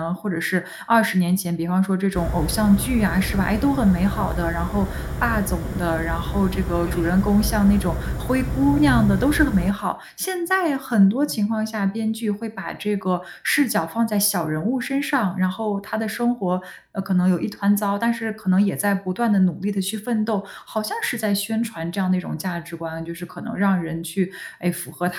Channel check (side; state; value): both; identical; correlation 1.00